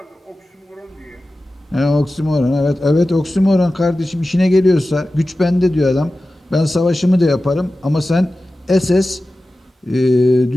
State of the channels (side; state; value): both; normal; correlation 0.95